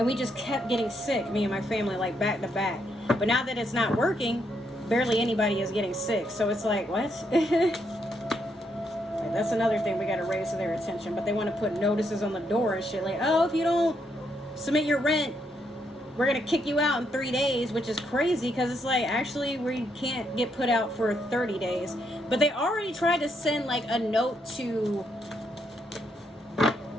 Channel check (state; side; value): normal; both; correlation 0.77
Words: we just kept getting sick, me and my family, like back to back. But now that it's not working, barely anybody is getting sick. So it's like, what? That's another thing we got to raise to their attention. But they want to put notices on the door and shit, like, oh, if you don't submit your rent, we're going to kick you out in 3 days, which is crazy, because it's like, actually, we can't get put out for 30 days. But they already tried to send like a note to,